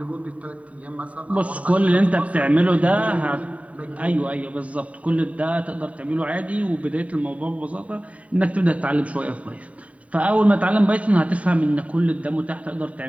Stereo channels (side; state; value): left; late; 0.067 ms